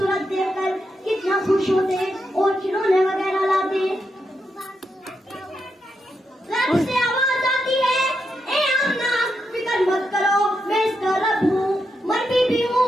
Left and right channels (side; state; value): both; normal; correlation 0.84